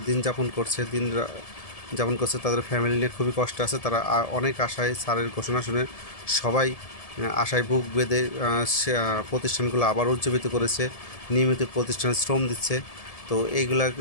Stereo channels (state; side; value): late; right; 1.7 ms